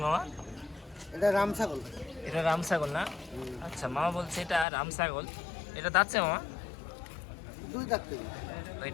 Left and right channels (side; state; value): right; drops out; at 4.7 s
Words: মামা? এটা রামছাগল। এটা রামছাগল না? আচ্ছা, মামা বলছে এটা রামছাগল। এটা দাঁতছে মামা? দুই দাঁত।